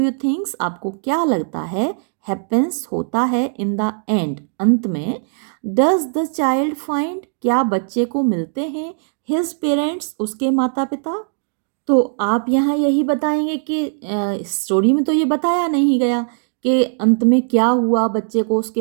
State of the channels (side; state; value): left; silent; digital silence